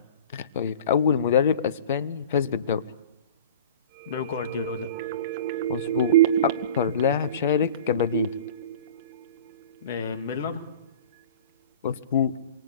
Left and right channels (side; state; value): both; inverted; correlation -0.39